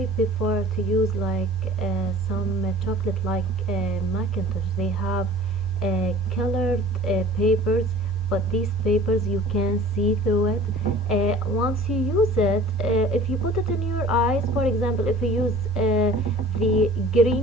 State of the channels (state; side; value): normal; both; correlation 0.46